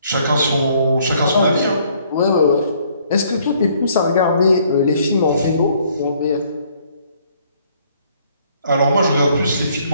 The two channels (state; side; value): inverted; both; correlation -0.64